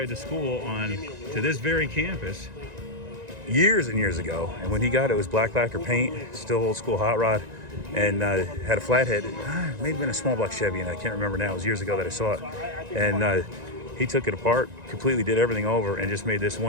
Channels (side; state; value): left; late; 1.9 ms